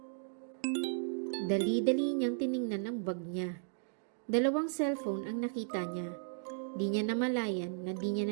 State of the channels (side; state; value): left; silent; digital silence